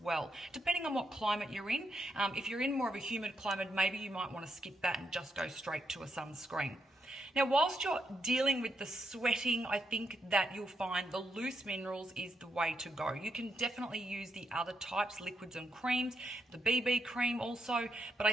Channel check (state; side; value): normal; both; correlation 0.80